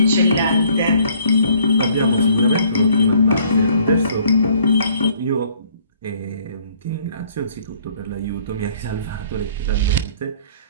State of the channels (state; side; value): inverted; both; correlation -0.60